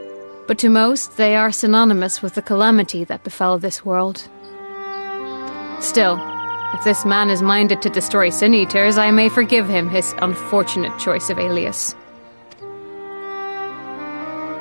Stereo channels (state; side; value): inverted; both; correlation -1.00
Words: But to most, they are synonymous with the calamity that befell this world. Still, if this man is minded to destroy Sin-Eaters, I may forgive him his unfortunate choice of alias.